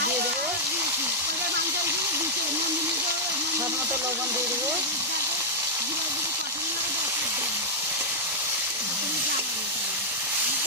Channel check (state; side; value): normal; both; correlation -0.06